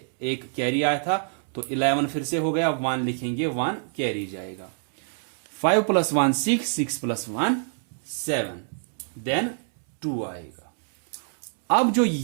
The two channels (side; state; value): left; silent; 61 dB below the other